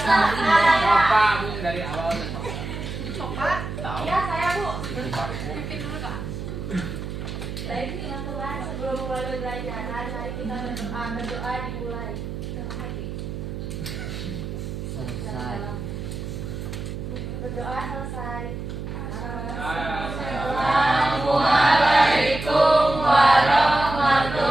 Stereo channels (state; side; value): noise; right; hum, 7 dB below the sound